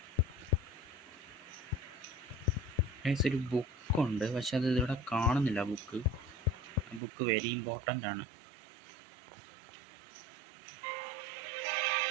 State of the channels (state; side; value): drops out; left; at 7.0 s